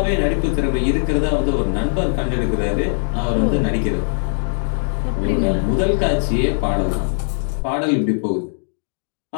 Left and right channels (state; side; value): silent; right; digital silence